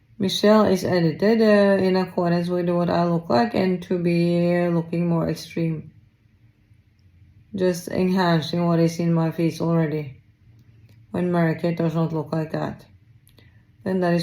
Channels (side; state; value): both; identical; correlation 1.00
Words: Michelle is edited in accordance with what I look like, and to be looking more extreme. Just enhancing what is in my face already, when Mary-Kate does not look like that. Then that is